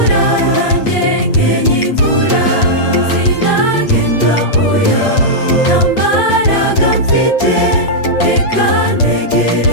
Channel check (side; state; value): right; late; 8.6 ms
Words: nanjye nkenya imvura. Sinagenda oya, nta mbaraga mfite, reka